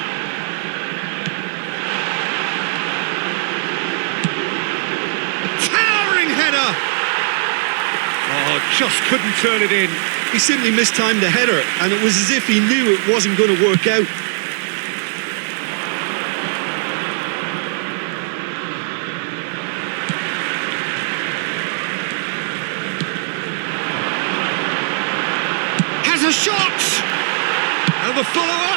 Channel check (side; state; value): left; silent; digital silence